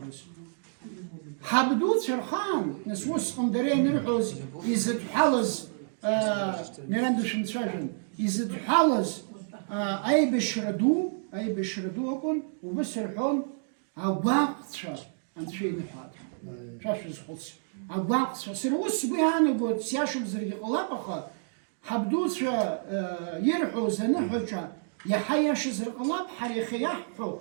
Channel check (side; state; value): left; silent; digital silence